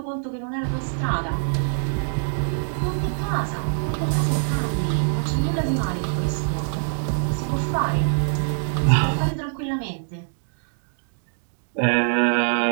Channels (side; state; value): left; silent; digital silence